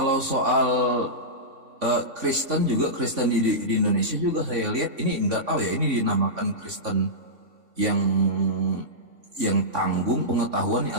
soal Kristen di Indonesia juga saya lihat ini nggak tahu ya, ini dinamakan Kristen yang tanggung pengetahuan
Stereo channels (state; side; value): late; left; 3.5 ms